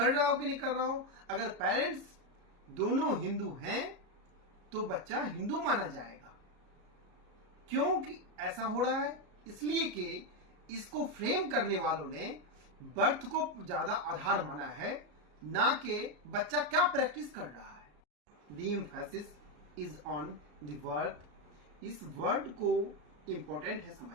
रहा हो कि नहीं कर रहा हो, अगर पेरेंट्स दोनों हिंदू हैं तो बच्चा हिंदू माना जाएगा. क्योंकि ऐसा हो रहा है इसलिए कि इसको फ्रेम करने वालों ने बर्थ को ज्यादा आधार माना है, ना कि बच्चा क्या प्रैक्टिस कर रहा है. The emphasis is on the word. इस वर्ड को इंपॉर्टेंट है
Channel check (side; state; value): left; late; 34 ms